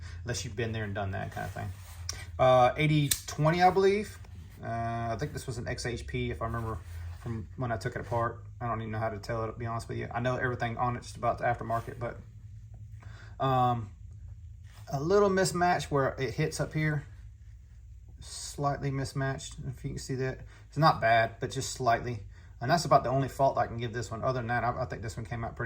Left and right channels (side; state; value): both; identical; correlation 1.00